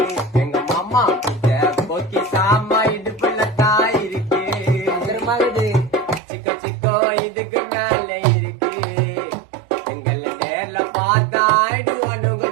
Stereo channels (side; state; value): left; drops out; at 6.2 s